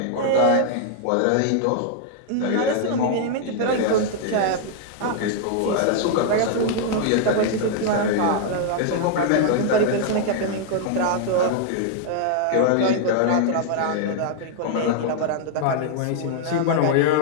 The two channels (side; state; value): both; different; correlation -0.01